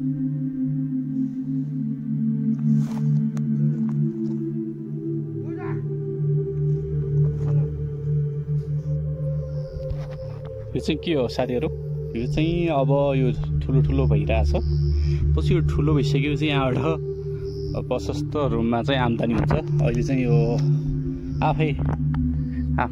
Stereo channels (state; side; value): identical; both; correlation 1.00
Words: यो चाहिँ के हो साथीहरू, यो चाहिँ अब यो ठुलो ठुलो भइरहेछ। पछि यो ठुलो भइसकेपछि यहाँबाट प्रशस्त रुममा चाहिँ आम्दानी हुन्छ। अहिले चाहिँ यो आफै